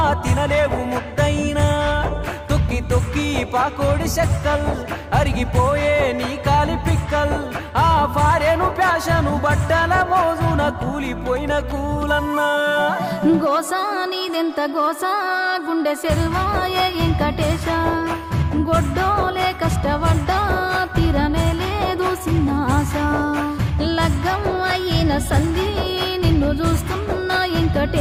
తినలేవు ముద్దైనా తొక్కి తొక్కి పాకోడి చెక్కల్ అరిగిపోయే నీ కాలి పిక్కల్ ఆ ఫారెను ప్యాషను బట్టల మోజున కూలిపోయిన కూలన్నా గోసా నీదెంత గోసా గుండె సెరువాయే వెంకటేశ గొడ్డోలే కష్టపడ్డా తీరనే లేదు చిన్న ఆశ లగ్గం అయిన సంధి నిన్ను చూస్తున్నా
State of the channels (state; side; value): identical; both; correlation 1.00